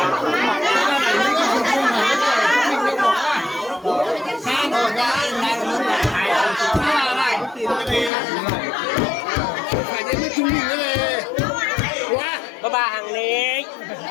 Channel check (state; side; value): drops out; right; at 8.1 s